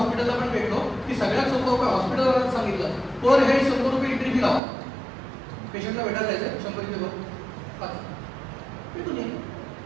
पण भेटलो की सगळ्यात सोपं उपाय हॉस्पिटलला सांगितलं, पर हेड 100 रुपये एंट्री फी लावा. पेशंटला भेटायला जायचं 100 रुपये बघ भेटून ये.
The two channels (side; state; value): left; drops out; at 4.6 s